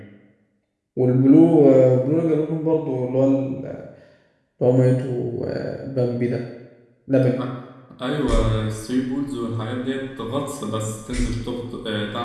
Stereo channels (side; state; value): both; identical; correlation 1.00